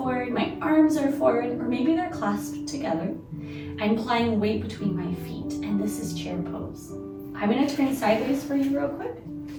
my arms are forward, or maybe they're clasped together. I'm applying weight between my feet, and this is chair pose. I'm gonna turn sideways for you real quick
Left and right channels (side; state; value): both; identical; correlation 1.00